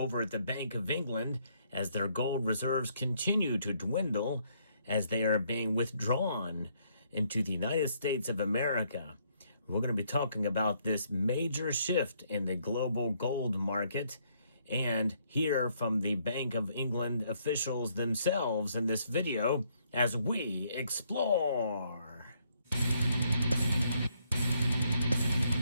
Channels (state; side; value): inverted; both; correlation -0.70